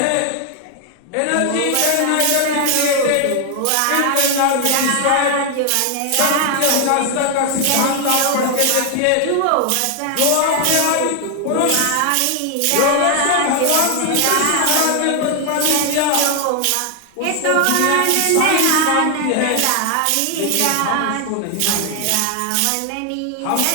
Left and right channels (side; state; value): both; different; correlation 0.00